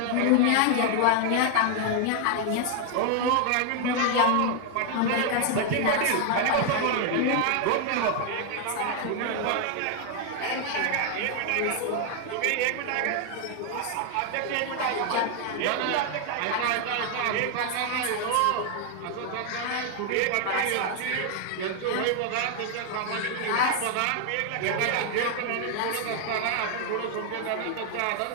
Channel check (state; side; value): different; both; correlation 0.00